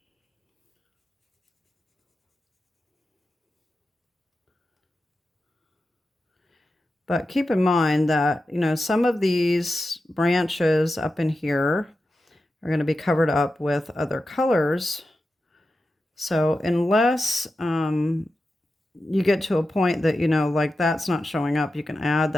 But keep in mind that, you know, some of these branches up in here are going to be covered up with other colors. So unless you get to a point that, you know, like that's not showing up, you can add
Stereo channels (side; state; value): both; normal; correlation 0.91